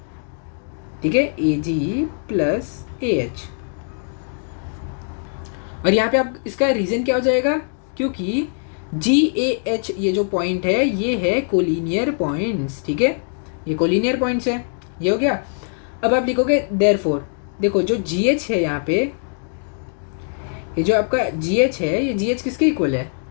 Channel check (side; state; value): right; silent; 60 dB below the other